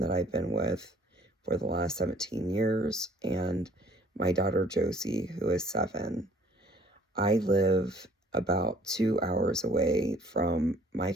that I've been with for the last 17 years and my daughter Josie, who is 7. I live about 2 hours away from my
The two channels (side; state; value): both; normal; correlation 0.57